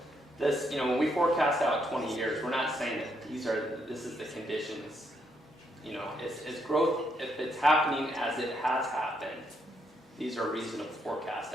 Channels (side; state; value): both; normal; correlation 0.75